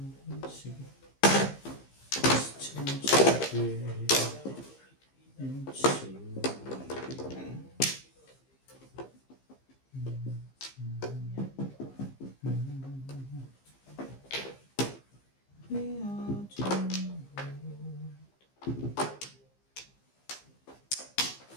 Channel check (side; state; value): right; late; 15 ms